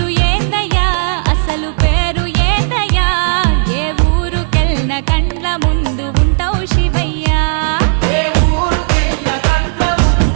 ఏందయ్యా అసలు పేరు ఏందయ్యా ఏ ఊరుకెళ్ళిన కండ్ల ముందు ఉంటావు శివయ్యా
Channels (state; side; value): silent; left; digital silence